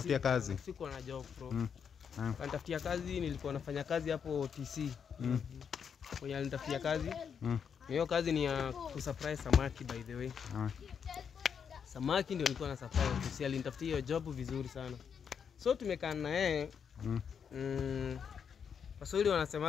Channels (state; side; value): quieter; right; 7.1 dB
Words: kazi. Siko na job bro. Alinitafutia kazi, nilikuwa nafanya kazi hapo TC. Kwa alinitafutia kazi. Hiyo kazi ni ya kusurprise samaki by the way. Samaki ndio nilikuwa na surprise. TC alinitafutia hiyo job vizuri sana. So tumekaa na yeye. Waswahili